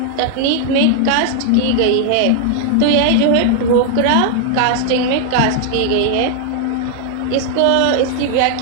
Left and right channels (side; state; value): both; different; correlation 0.00